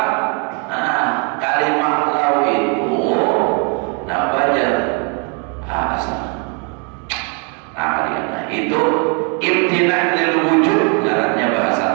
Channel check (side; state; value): left; quieter; 36.8 dB